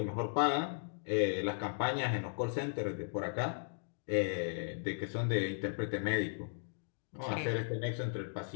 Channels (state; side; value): silent; right; digital silence